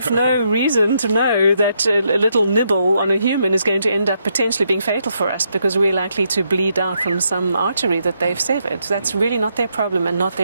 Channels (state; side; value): inverted; both; correlation -0.78